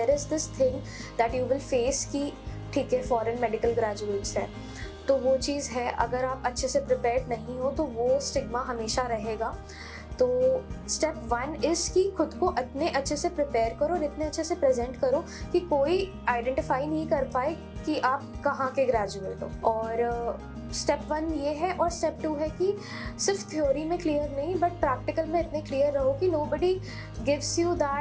is this thing that you will face कि ठीक है foreign medical graduates है, तो वो चीज़ है, अगर आप अच्छे से प्रिपेयर्ड नहीं हो तो वो स्टिग्मा हमेशा रहेगा. तो स्टेप 1 इज़ कि खुद को इतने अच्छे से प्रिपेयर करो और इतने अच्छे से प्रेजेंट करो कि कोई आइडेंटिफाई नहीं कर पाए कि आप कहाँ के ग्रेजुएट हो. और स्टेप 1 ये है, और स्टेप 2 है कि सिर्फ थ्योरी में क्लियर नहीं बट प्रैक्टिकल में इतने क्लियर रहो कि nobody gives you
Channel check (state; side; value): identical; both; correlation 1.00